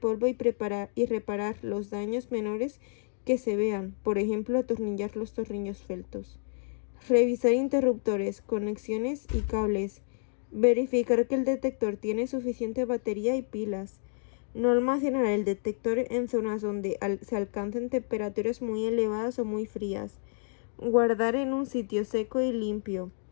y reparar los daños menores que se vean, por ejemplo, atornillar los tornillos sueltos. Revisar interruptores, conexiones y cables. Verificar que el detector tiene suficiente batería y pilas. No almacenar el detector en zonas donde se alcancen temperaturas muy elevadas o muy frías. Guardar en un sitio seco y limpio.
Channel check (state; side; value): silent; right; 58 dB below the other